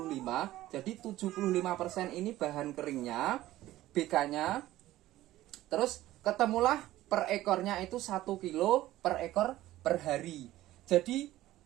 jadi 75% ini bahan keringnya, BK-nya. Terus ketemulah per ekornya itu 1 kilo per ekor per hari. Jadi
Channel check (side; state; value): left; quieter; 15.4 dB